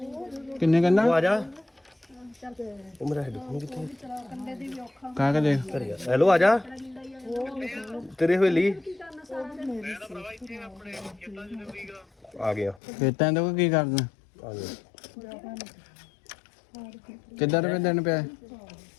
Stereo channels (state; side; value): drops out; right; at 12.8 s